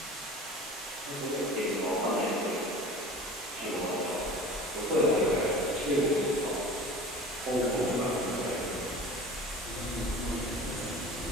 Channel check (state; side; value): normal; both; correlation 0.39